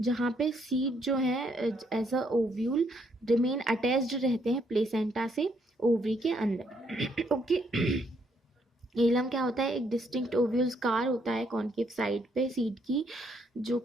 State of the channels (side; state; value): both; normal; correlation 0.72